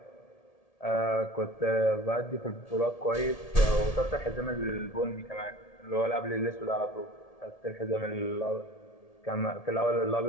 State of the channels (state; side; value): late; right; 1.8 ms